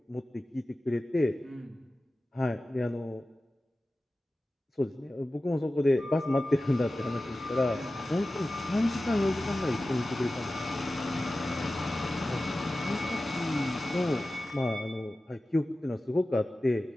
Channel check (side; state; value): both; normal; correlation 0.95